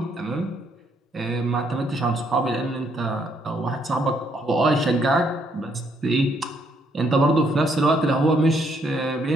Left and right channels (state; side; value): normal; both; correlation 0.71